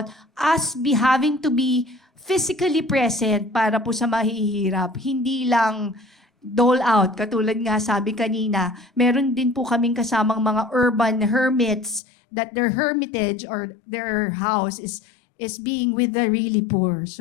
us having to be physically present para po sa mahihirap. Hindi lang dole out. Katulad nga sabi kanina, meron din po kaming kasamang mga urban hermits that their hermitage or their house is being with the really poor.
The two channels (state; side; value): drops out; right; at 12.0 s